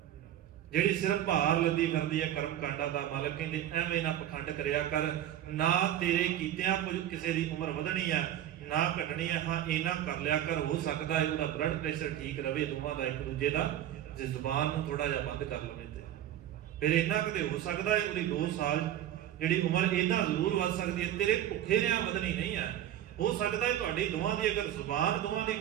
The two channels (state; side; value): quieter; left; 11.6 dB